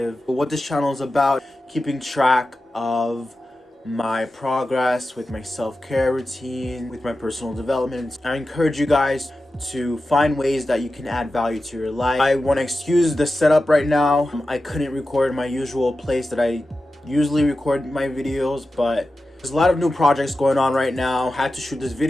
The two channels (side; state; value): both; normal; correlation 0.93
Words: what this channel is about, keeping track of my progress with my self-care routine, with my personal development. I encourage you guys to find ways that you can add value to your life. I want to excuse the setup right now. I couldn't record my usual place that I usually record my videos, but there's a lot of new projects going on right now. Had to shoot this